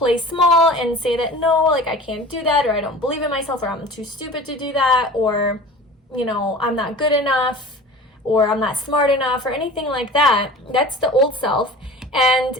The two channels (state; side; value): normal; both; correlation 0.40